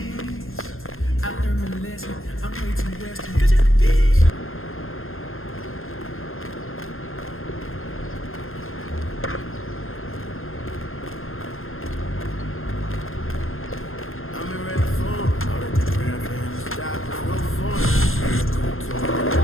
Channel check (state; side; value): late; right; 0.60 ms